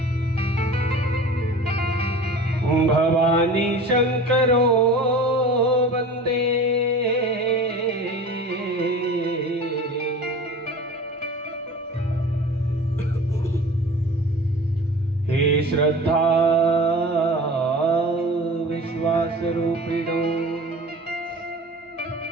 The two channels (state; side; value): normal; both; correlation 0.39